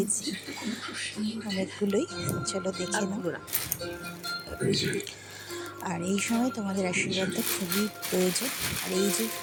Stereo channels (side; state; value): both; identical; correlation 1.00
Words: অনেকগুলোই, চলো দেখে নাও। আর এই সময় তোমাদের আশীর্বাদটা খুবই প্রয়োজন। আর এই যে